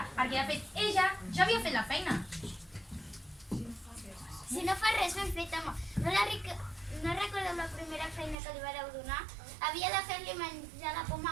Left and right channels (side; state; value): left; drops out; at 8.3 s